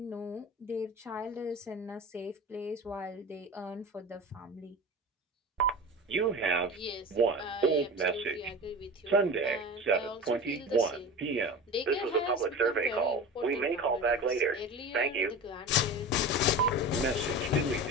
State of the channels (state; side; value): normal; both; correlation 0.32